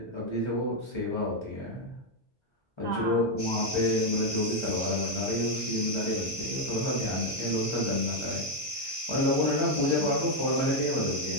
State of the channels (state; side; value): normal; both; correlation 0.03